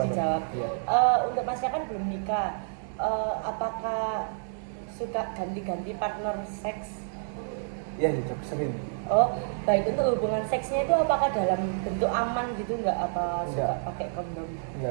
dijawab. Iya. Untuk Masnya kan belum nikah. Apakah suka ganti-ganti partner seks? Iya gitu, sering. Oh, baik. Untuk hubungan seksnya itu apakah dalam bentuk aman gitu nggak? Apa suka Enggak. pakai kondom?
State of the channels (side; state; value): left; silent; digital silence